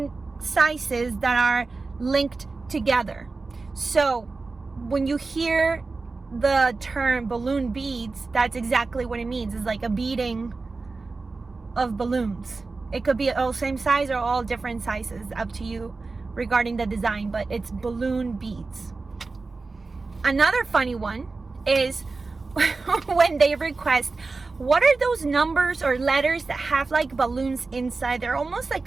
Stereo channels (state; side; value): quieter; left; 3.9 dB